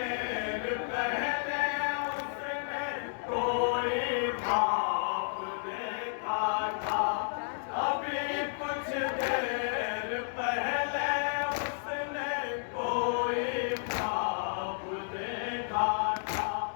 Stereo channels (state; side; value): silent; right; 57 dB below the other